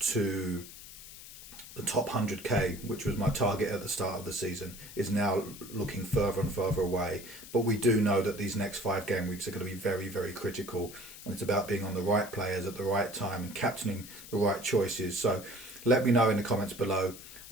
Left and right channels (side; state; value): left; noise; hiss, 15 dB below the sound